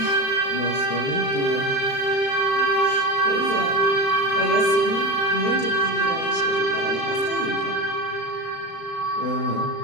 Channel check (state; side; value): late; right; 35 ms